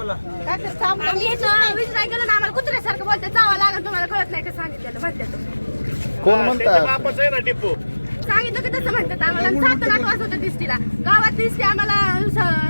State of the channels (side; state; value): both; inverted; correlation -1.00